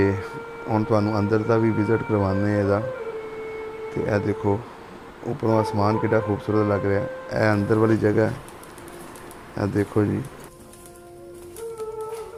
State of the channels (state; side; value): identical; both; correlation 1.00